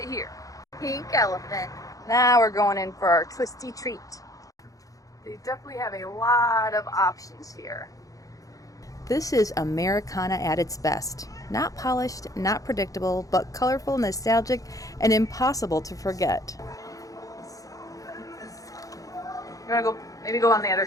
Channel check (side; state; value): right; late; 0.17 ms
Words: here. Pink elephant. Now we're going in for our twisty treat. They definitely have a lot of options here. This is Americana at its best. Not polished, not predictable, but colorful, nostalgic, and impossible to forget. You wanna go, maybe go on the other